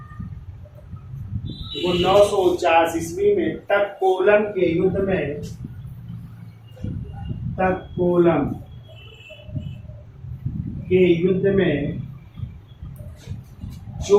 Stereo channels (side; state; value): both; identical; correlation 1.00